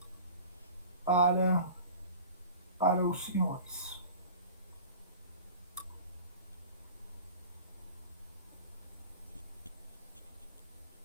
para os senhores.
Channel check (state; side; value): inverted; both; correlation -0.40